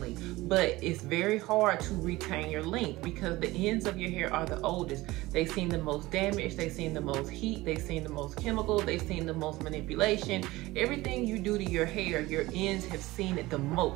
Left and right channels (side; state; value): left; quieter; 19.2 dB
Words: but it's very hard to retain your length because the ends of your hair are the oldest. They've seen the most damage, they've seen the most heat, they've seen the most chemical, they've seen the most manipulation. Everything you do to your hair, your ends have seen it the